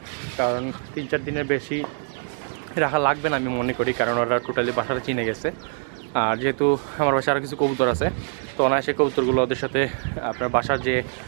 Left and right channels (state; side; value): silent; left; digital silence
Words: কারণ 3-4 দিনের বেশি রাখা লাগবে না আমি মনে করি, কারণ ওরা টোটালি বাসাটা চিনে গেছে। আর যেহেতু আমার বাসায় আরও কিছু কবুতর আছে, তো অনায়াসে কবুতরগুলো ওদের সাথে আপনার বাসার যে